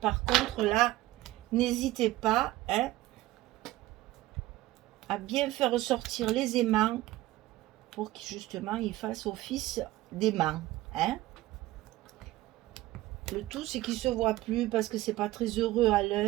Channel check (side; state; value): left; quieter; 16.7 dB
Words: contre, là, n'hésitez pas hein, à bien faire ressortir les aimants pour que justement ils fassent office d'aimants. Hein. Le tout, c'est qu'ils ne se voient plus parce que c'est pas très heureux à